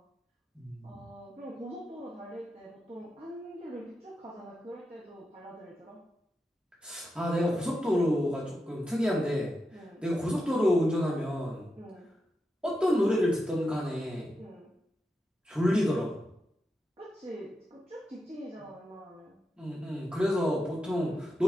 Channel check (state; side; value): normal; both; correlation 0.87